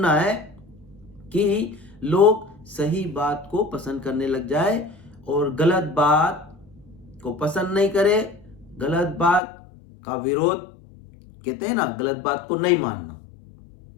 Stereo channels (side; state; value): right; drops out; at 9.4 s